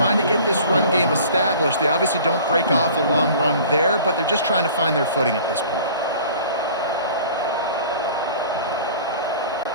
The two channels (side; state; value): both; inverted; correlation -0.45